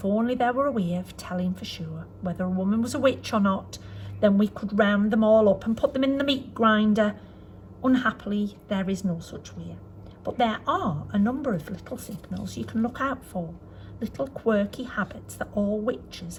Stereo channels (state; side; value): identical; both; correlation 1.00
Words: only there were a way of telling for sure whether a woman was a witch or not, then we could round them all up and put them in the meat grinder. Unhappily, there is no such way. But there are a number of little signals you can look out for, little quirky habits that all witches